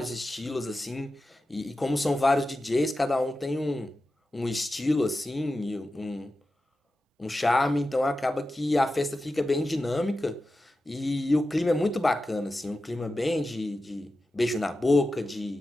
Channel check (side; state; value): both; normal; correlation 0.92